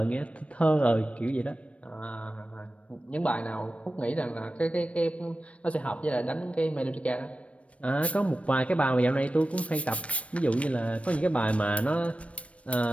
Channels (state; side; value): late; right; 0.063 ms